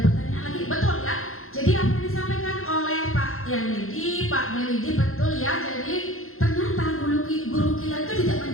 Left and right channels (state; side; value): late; right; 0.61 ms